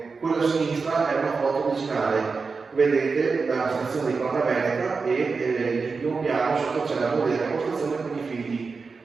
quella a sinistra è una foto originale. Vedete la stazione di Colonia Veneta e in primo piano sotto c'è la moderna postazione con i figli.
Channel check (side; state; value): left; quieter; 4.7 dB